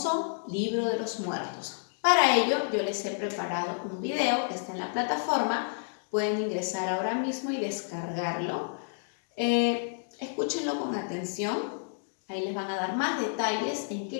libro de los muertos. Para ello, yo les he preparado un video que está en la plataforma. Pueden ingresar ahora mismo y descargarlo. Escúchenlo con atención. Ahí les van a dar más detalles en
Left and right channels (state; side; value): silent; right; digital silence